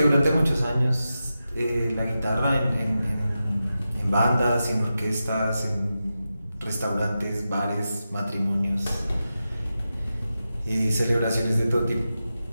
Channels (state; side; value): inverted; both; correlation -0.91